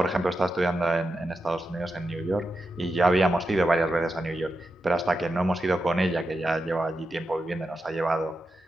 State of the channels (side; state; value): both; normal; correlation 0.88